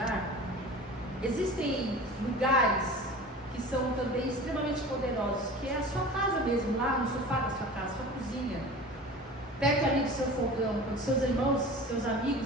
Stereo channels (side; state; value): both; normal; correlation 0.38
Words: existem lugares que são também extremamente poderosos, que é a sua casa mesmo, lá no sofá da sua casa, sua cozinha, perto ali do seu fogão, quando seus irmãos, seus